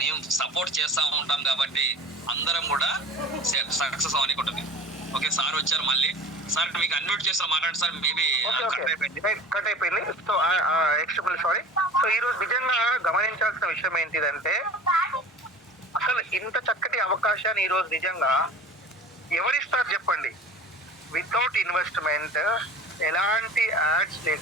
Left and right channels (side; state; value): both; normal; correlation 0.40